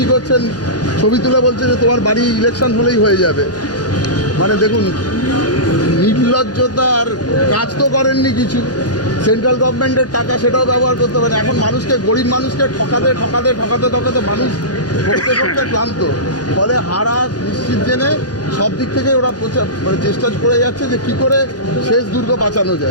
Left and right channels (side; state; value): both; normal; correlation -0.20